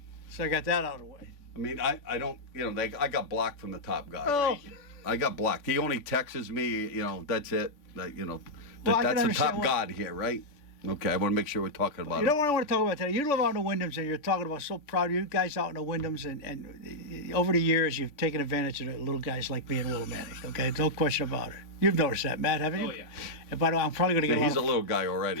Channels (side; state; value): right; late; 3.5 ms